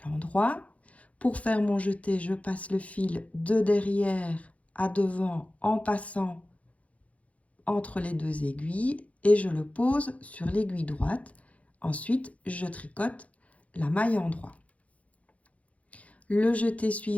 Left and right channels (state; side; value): late; right; 0.066 ms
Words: l'endroit. Pour faire mon jeté, je passe le fil de derrière à devant en passant entre les 2 aiguilles et je le pose sur l'aiguille droite. Ensuite, je tricote la maille endroit. Le jeté